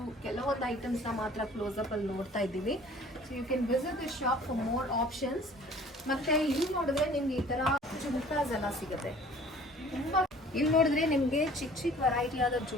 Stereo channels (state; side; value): normal; both; correlation 0.50